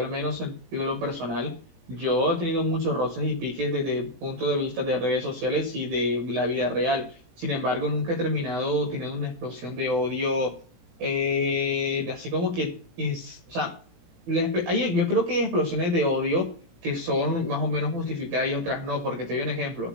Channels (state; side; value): late; left; 18 ms